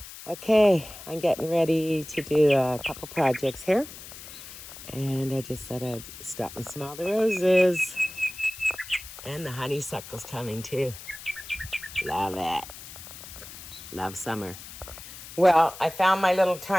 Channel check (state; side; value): noise; left; hiss, 14 dB below the sound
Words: Okay, I'm getting ready to do a couple projects here. And I just thought I'd stop and smell the roses. And the honeysuckle's coming too. Love it. Love summer. Well, I found my little